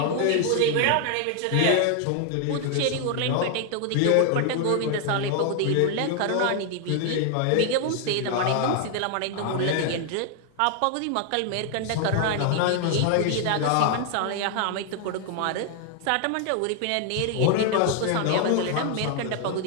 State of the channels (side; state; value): both; different; correlation 0.00